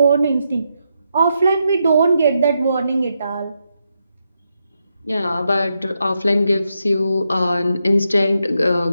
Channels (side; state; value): both; inverted; correlation -0.83